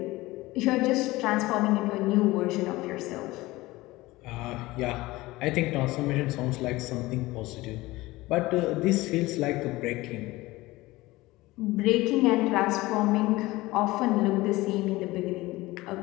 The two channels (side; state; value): right; quieter; 19.6 dB